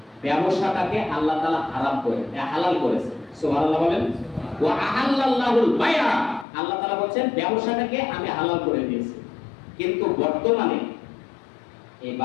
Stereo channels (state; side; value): drops out; right; at 6.5 s